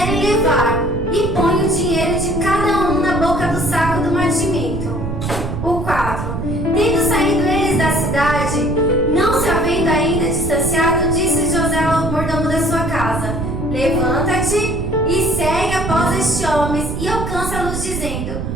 levar, e põe o dinheiro de cada um na boca do saco do mantimento. O 4. Tendo saído eles da cidade, não se havendo ainda distanciado, disse José ao mordomo da sua casa: levanta-te e segue após estes homens e alcança-los, dizendo:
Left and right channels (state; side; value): noise; right; rumble, 4 dB below the sound